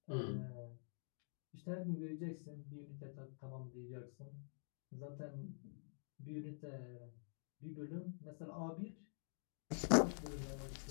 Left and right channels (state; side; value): silent; right; digital silence